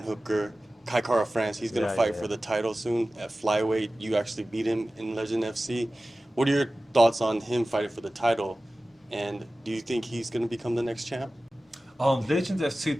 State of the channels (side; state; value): both; normal; correlation 0.96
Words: Hooker, Kai Kara France. He's going to fight for the title soon at flyweight. You actually beat him in Legend FC. What are your thoughts on him fighting for the title? And do you think he's going to become the next champ? Legend FC